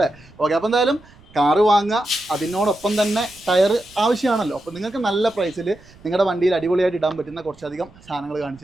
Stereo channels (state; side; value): noise; right; rumble, 25 dB below the sound